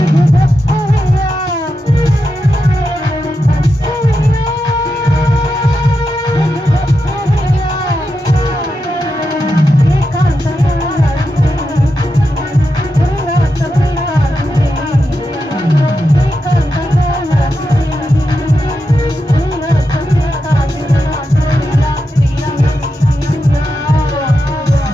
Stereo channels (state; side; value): normal; both; correlation 0.87